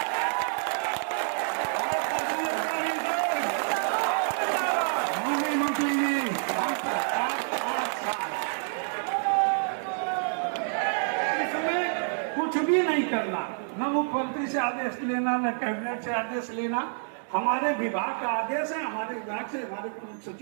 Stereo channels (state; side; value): silent; left; digital silence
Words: भी नहीं करना, न मुख्यमंत्री से आदेश लेना, न कैबिनेट से आदेश लेना। हमारे विभाग का आदेश है, हमारे विभाग से हमारे प्रमुख